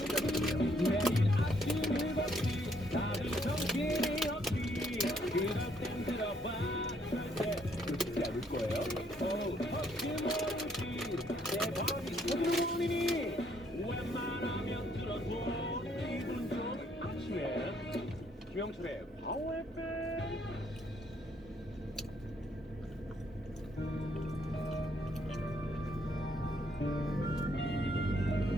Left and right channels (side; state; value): both; normal; correlation 0.69